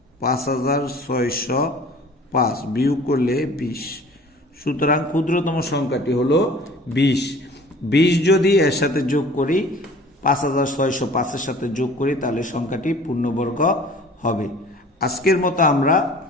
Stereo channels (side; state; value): both; normal; correlation 0.47